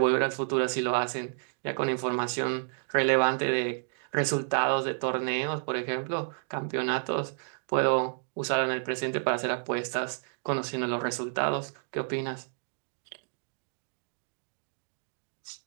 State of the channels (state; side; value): silent; left; digital silence